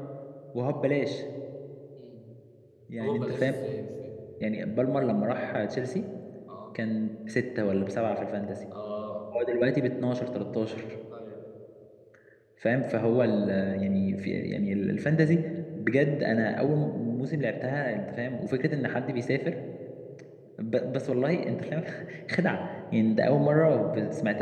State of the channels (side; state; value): both; identical; correlation 1.00